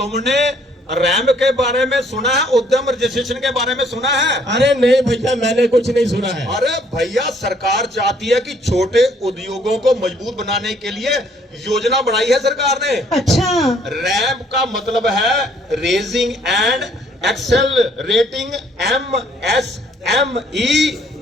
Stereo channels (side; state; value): both; normal; correlation 0.63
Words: रैंप के बारे में सुना है, उद्यम रजिस्ट्रेशन के बारे में सुना है? अरे नहीं भैया, मैंने कुछ नहीं सुना है। अरे भैया, सरकार चाहती है कि छोटे उद्योगों को मजबूत बनाने के लिए योजना बनाई है सरकार ने। अच्छा, रैंप का मतलब है raising and accelerating MSME